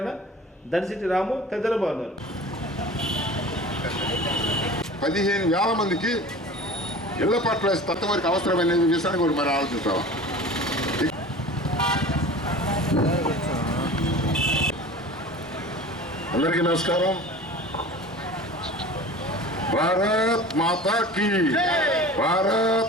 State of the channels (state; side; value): normal; both; correlation 0.39